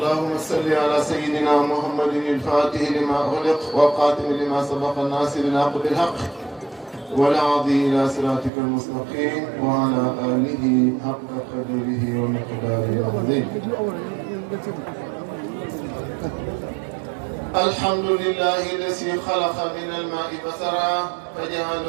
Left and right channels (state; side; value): drops out; left; at 8.5 s